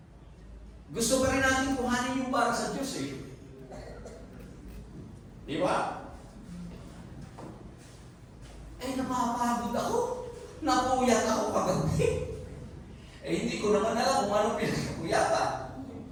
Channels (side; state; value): both; identical; correlation 1.00